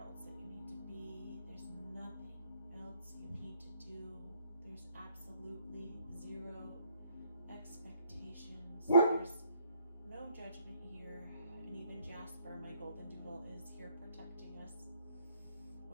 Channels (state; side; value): inverted; both; correlation -0.67